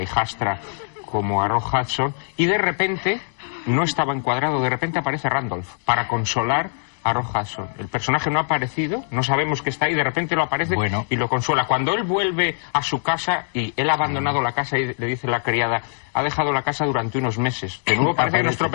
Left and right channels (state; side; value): silent; right; digital silence